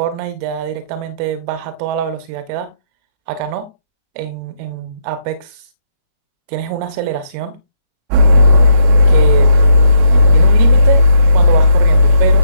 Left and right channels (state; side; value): late; left; 36 ms